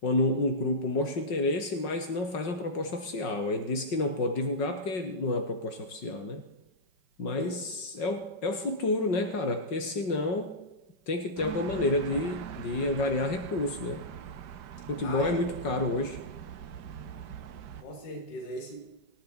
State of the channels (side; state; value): right; late; 5.5 ms